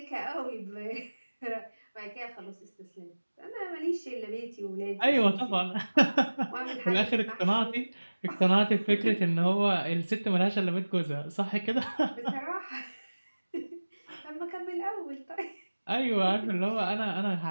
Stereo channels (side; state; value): both; inverted; correlation -1.00